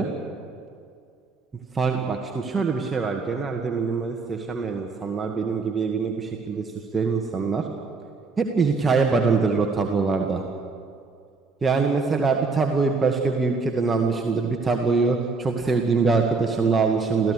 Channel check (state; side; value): quieter; left; 4.2 dB